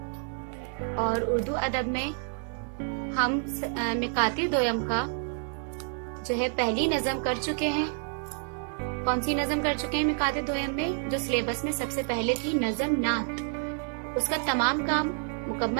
और उर्दू अदब में हम मिकाते दोयम का जो है पहली नज़म कर चुके हैं। कौन सी नज़म कर चुके हैं मिकाते दोयम में? जो सिलेबस में सबसे पहले थी नज़म नात, उसका तमाम काम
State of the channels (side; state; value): left; silent; 59 dB below the other